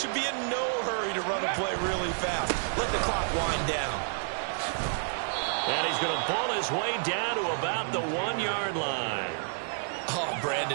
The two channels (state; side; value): silent; left; digital silence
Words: be in no hurry to run a play really fast. Let the clock wind down. And he's going to ball his way down to about the 1-yard line. Oh,